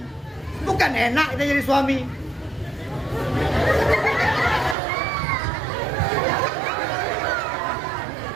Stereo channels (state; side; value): drops out; left; at 4.8 s